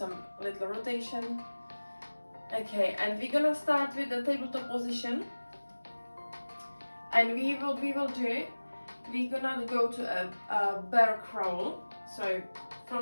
little rotation. Okay, and we're gonna start with the tabletop position, and we're gonna go to a bear crawl. So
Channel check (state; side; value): inverted; both; correlation -1.00